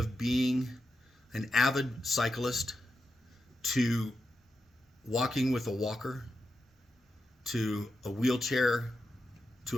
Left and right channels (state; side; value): normal; both; correlation 0.88